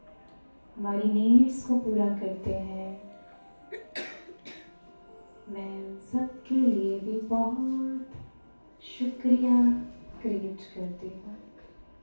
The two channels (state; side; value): inverted; both; correlation -1.00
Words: हमारी नीड्स को पूरा करते हैं। मैं सबके लिए भी बहुत शुक्रिया क्रिएट करती हूँ।